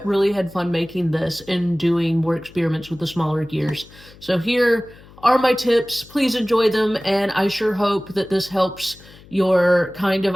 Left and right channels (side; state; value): left; noise; hum, 23 dB below the sound